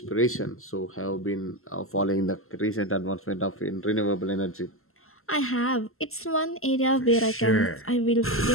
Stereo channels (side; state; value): right; late; 0.62 ms